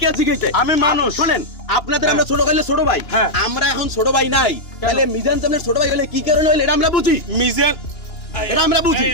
কে জিজ্ঞেস আমি মানুষ শুনেন আপনাদের আমরা ছোট ভাইলে ছোট ভাই আমরা এখন ছোট ভাই নাই তাহলে মিজান সামনে ছোট ভাই হলে কি কারণে হইল এটা আমরা বুঝি মিজান এটা আমরা বুঝি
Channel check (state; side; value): late; right; 2.9 ms